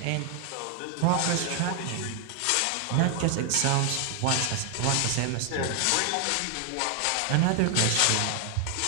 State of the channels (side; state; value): both; different; correlation 0.00